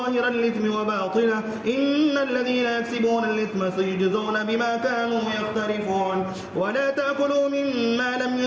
الإثم وباطنه إن الذين يكسبون الإثم سيجزون بما كانوا يقترفون. ولا تأكلوا مما لم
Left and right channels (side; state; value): both; identical; correlation 1.00